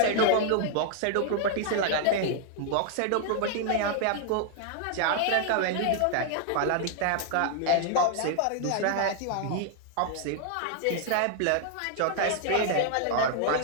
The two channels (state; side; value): different; both; correlation 0.00